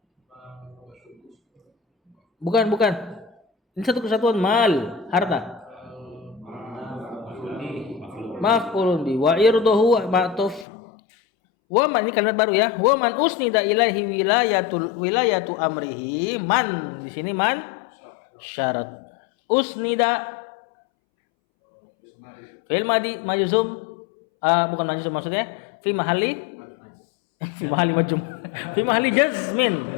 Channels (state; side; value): drops out; right; at 10.7 s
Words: Bukan. Ini satu kesatuan mal, harta. Maf'ulun bi wa irduhu ma'tuf. Wa man, ini kalimat baru ya. Wa man usnida ilaihi wilayatu amrihi. Man di sini man syarat. Usnida fi'il madi majzum, bukan majzum maksudnya fi mahalli majzum. Fi mahalli jazmin.